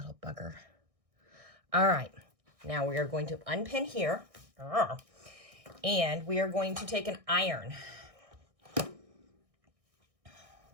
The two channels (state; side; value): late; left; 1.6 ms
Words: bugger. All right, now we are going to unpin here, and we are going to take an iron,